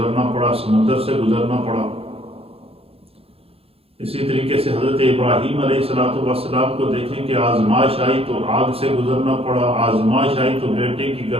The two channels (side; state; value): left; late; 0.28 ms